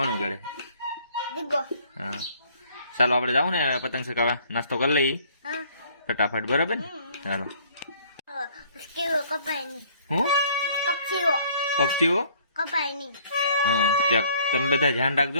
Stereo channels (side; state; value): both; inverted; correlation -0.58